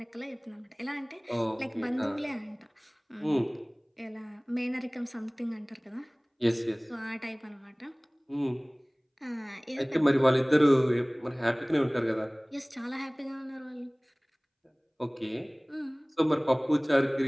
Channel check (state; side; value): identical; both; correlation 1.00